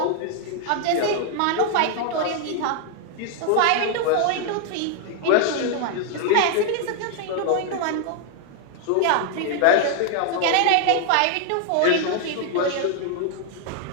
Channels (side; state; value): both; different; correlation 0.00